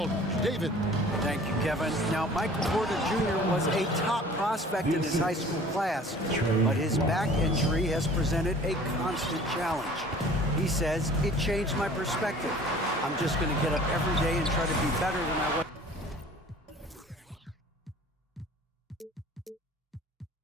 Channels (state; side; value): normal; both; correlation 0.48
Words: David. Thank you, Kevin. Now, Michael Porter Jr. was a top prospect in his high school class, but his back injury has presented a constant challenge. He says, it changed my perspective. I'm just going to get up every day and try to be better than I was